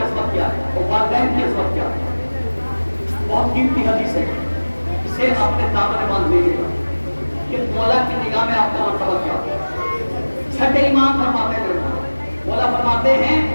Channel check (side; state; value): both; inverted; correlation -1.00